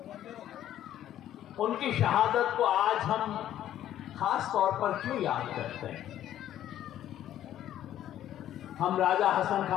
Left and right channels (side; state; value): right; quieter; 11.8 dB